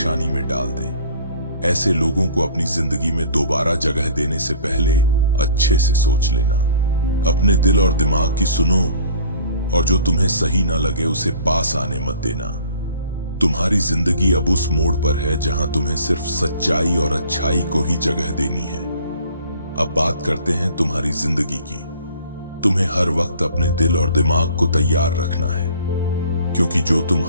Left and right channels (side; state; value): both; inverted; correlation -0.50